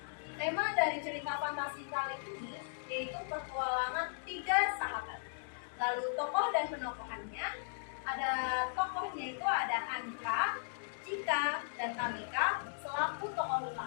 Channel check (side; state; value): right; silent; digital silence